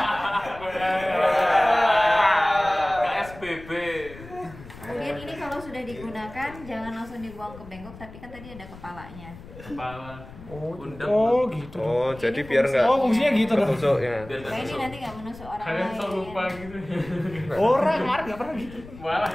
KSBB. Kemudian ini kalau sudah digunakan jangan langsung dibuang ke bengkok, tapi kan tadi ada kepalanya. Kepala. Undang. Oh, gitu. Oh, Ini jadi biar fungsinya. nggak Oh, fungsinya gitu dong. ketusuk ya. Biar nggak Kayak ini tusuk. nanti nggak menusuk orang Kalian lain. sok lupa gitu. Orang kemarin enggak pernah gitu. Malah.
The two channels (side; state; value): left; noise; rumble, 17 dB below the sound